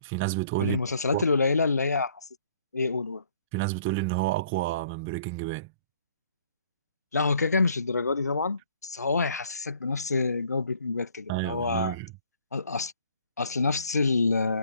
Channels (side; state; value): both; inverted; correlation -0.59